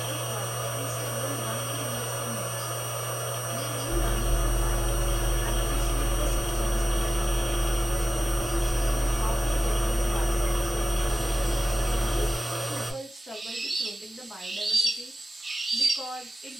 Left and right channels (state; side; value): normal; both; correlation 0.96